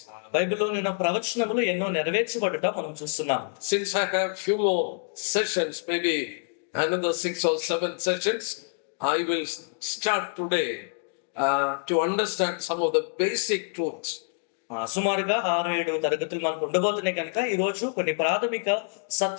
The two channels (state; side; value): silent; right; 60 dB below the other